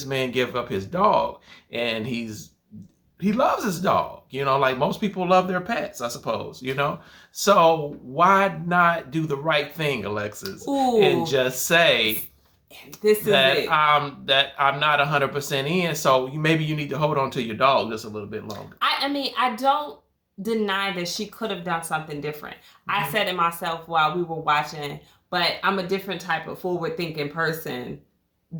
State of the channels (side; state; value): both; identical; correlation 1.00